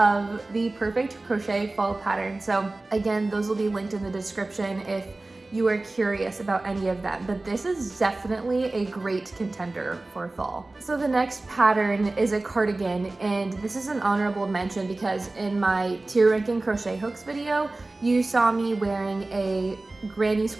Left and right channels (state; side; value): quieter; left; 3.0 dB